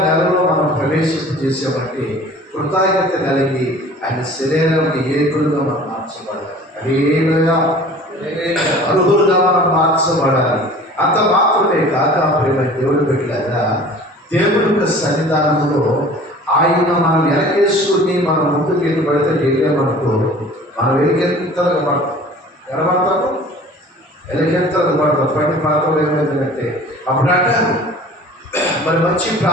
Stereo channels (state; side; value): normal; both; correlation 0.45